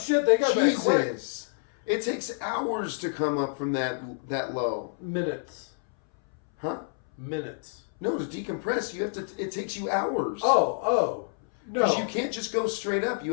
they got back quick. Jesus. It takes hours to come up from that low. Minutes. Huh? Minutes. No, to decompress, it takes you hours. Oh. No. Because you can't just go straight up. You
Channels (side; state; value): right; silent; 59 dB below the other